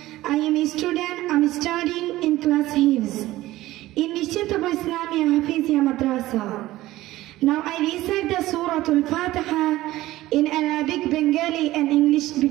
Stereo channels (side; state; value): left; quieter; 16.6 dB